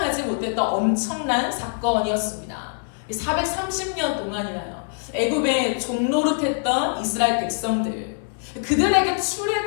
못했던 엄청난 사건이었습니다. 430년 동안이나요. 애굽에 종노릇했던 이스라엘 백성들, 그들에게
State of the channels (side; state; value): right; silent; digital silence